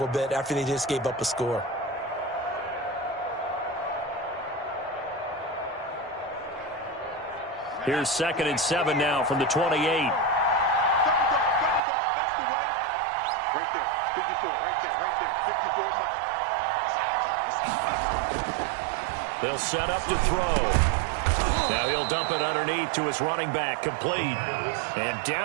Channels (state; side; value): drops out; left; at 11.8 s